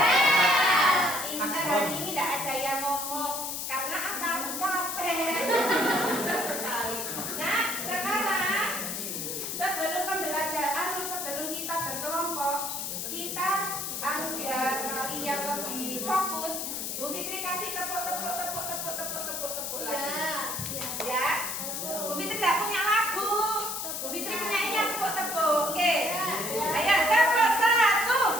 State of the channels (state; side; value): noise; left; hiss, 4 dB below the sound